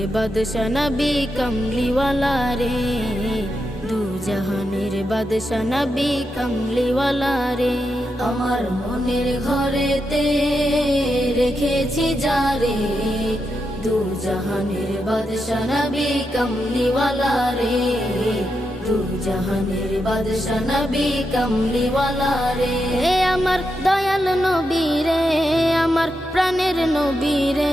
বাদশা নবী কমলিওয়ালা রে, দু জাহানের বাদশা নবী কমলিওয়ালা রে। আমার মনের ঘরেতে রেখেছি যারে, দু জাহানের বাদশা নবী কমলিওয়ালা রে, দু জাহানের বাদশা নবী কমলিওয়ালা রে। আমার দয়াল নবী রে, আমার প্রাণের নবী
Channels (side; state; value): both; normal; correlation 0.85